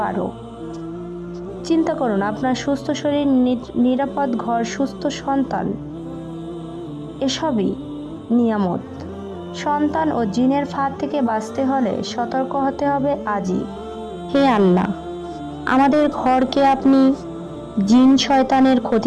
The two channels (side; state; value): both; identical; correlation 1.00